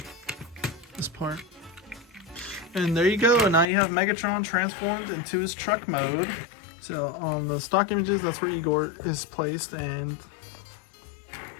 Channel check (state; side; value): drops out; right; at 3.7 s